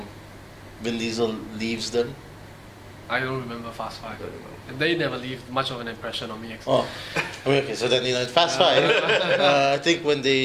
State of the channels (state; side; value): identical; both; correlation 1.00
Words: Vin Diesel leaves them. I don't remember Fast Five. And they never leave much of an impression on me. Actually. Oh, okay. So then in Fast 5, I think